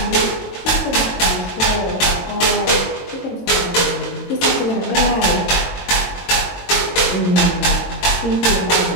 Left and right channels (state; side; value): late; right; 22 ms